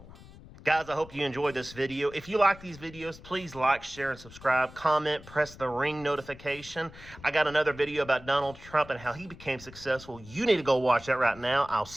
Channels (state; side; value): noise; left; rumble, 19 dB below the sound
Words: Guys, I hope you enjoyed this video. If you like these videos, please like, share, and subscribe. Comment, press the ring notification. I got another video about Donald Trump and how he became successful. You need to go watch that right now. I'll